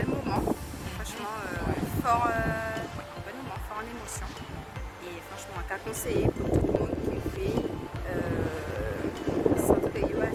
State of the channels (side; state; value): both; identical; correlation 1.00